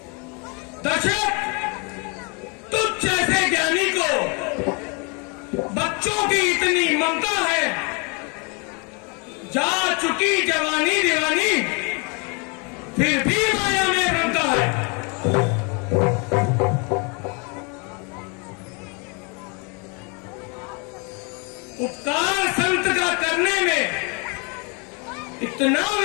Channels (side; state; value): right; quieter; 33.2 dB